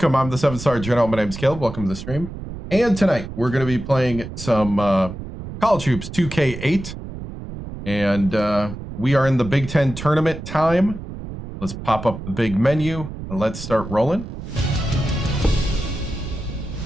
I'm the 7-star general. My name's Caleb. Welcome to the stream. And tonight we're going to be playing some College Hoops 2K8. And we are in the Big Ten tournament time. Let's pop up the big menu and let's start rolling.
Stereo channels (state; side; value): noise; right; rumble, 10 dB below the sound